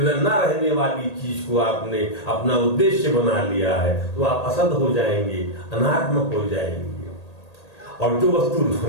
रहने वाली चीज को आपने अपना उद्देश्य बना लिया है तो आप असद हो जाएंगे, अनात्मक हो जाएंगे। और जो वस्तु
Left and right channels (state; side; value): late; right; 1.8 ms